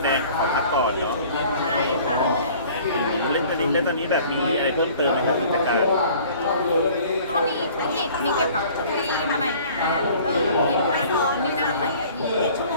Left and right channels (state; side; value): inverted; both; correlation -0.50